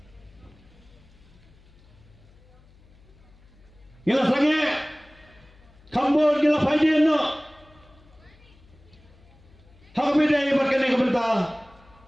gila sange, kambor gila faiden no, hak beda ibat kene kebentar.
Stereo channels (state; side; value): noise; left; hum, 27 dB below the sound